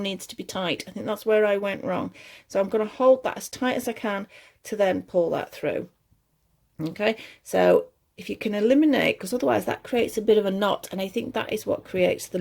needs to be tight. I think that's where I went wrong. So I'm going to hold that as tight as I can to then pull that through. Okay, so if you can eliminate, because otherwise that creates a bit of a knot, and I think that is what creates the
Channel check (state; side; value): identical; both; correlation 1.00